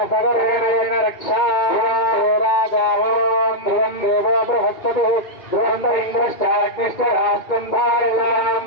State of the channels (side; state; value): right; late; 2.2 ms